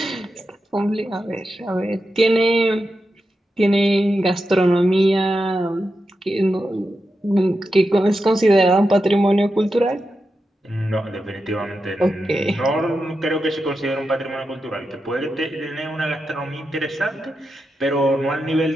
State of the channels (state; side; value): normal; both; correlation 0.88